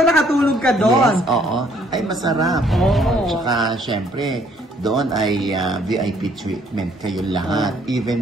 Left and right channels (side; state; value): both; normal; correlation 0.64